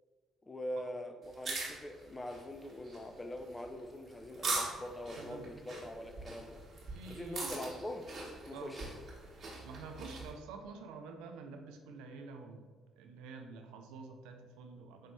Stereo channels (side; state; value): both; normal; correlation 0.76